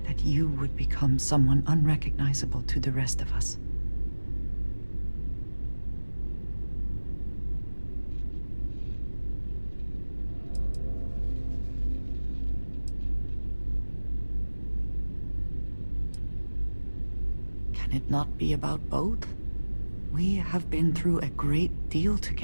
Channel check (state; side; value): inverted; both; correlation -1.00